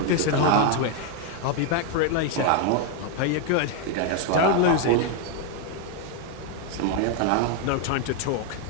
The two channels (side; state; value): both; different; correlation 0.01